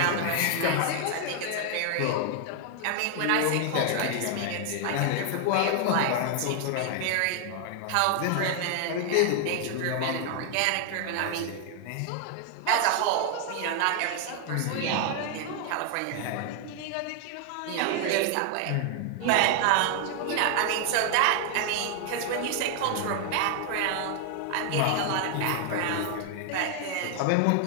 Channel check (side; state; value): both; different; correlation 0.00